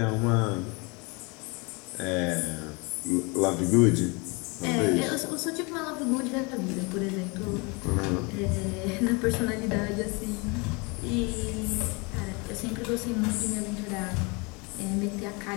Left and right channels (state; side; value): quieter; right; 29.1 dB